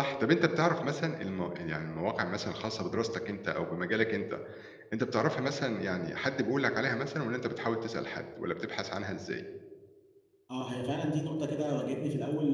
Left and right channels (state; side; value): identical; both; correlation 1.00